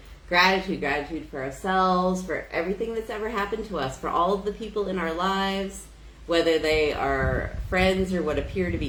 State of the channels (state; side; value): identical; both; correlation 1.00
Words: gratitude for ourselves, for everything that's ever happened to us, for all of the people in our lives, whether they are friends or what appear to